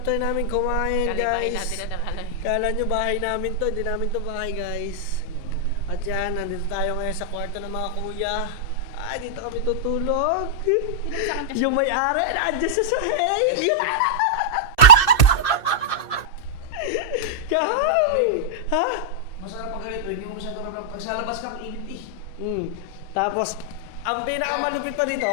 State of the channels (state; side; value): late; right; 2.7 ms